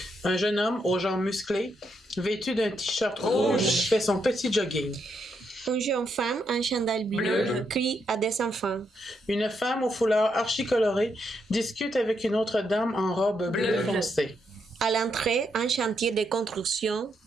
Un jeune homme aux jambes musclées vêtu d'un t-shirt rouge fait son petit jogging. Une jeune femme en chandail bleu crie à des enfants. Une femme au foulard archi-coloré discute avec une autre dame en robe bleue foncée. À l'entrée, un chantier de construction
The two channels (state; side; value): normal; both; correlation 0.79